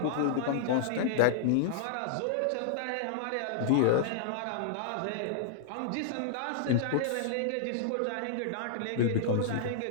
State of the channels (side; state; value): both; different; correlation -0.01